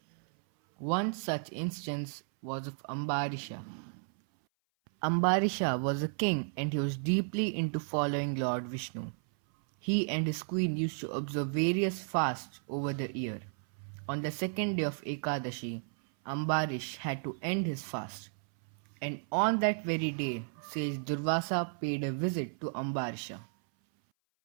One such instance was of Ambarisha. Ambarisha was a king and he was deeply into following Lord Vishnu. He and his queen used to observe various fasts over the year. On the second day of Ekadashi, Ambarish had to end his fast. And on that very day, sage Durvasa paid a visit to Ambarisha.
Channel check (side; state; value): left; silent; 55 dB below the other